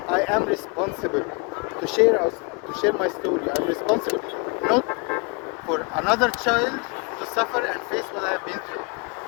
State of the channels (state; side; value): quieter; right; 31.8 dB